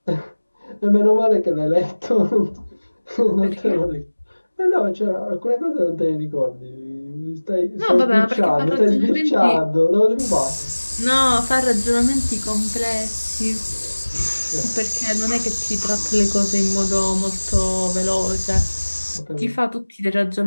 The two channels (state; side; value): inverted; both; correlation -1.00